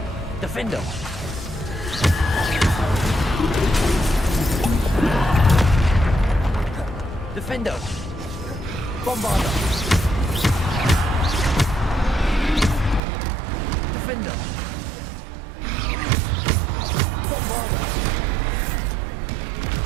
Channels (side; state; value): left; drops out; at 13.0 s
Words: Defender. Defender. Bombarder. Defender. Bombarder.